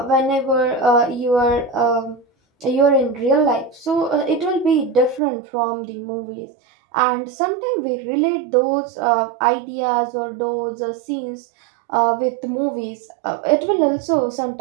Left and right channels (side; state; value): left; drops out; at 5.2 s